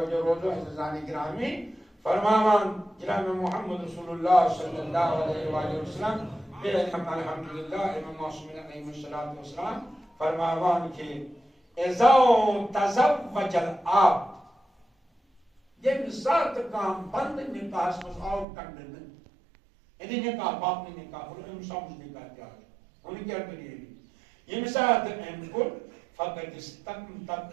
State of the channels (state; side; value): drops out; left; at 18.4 s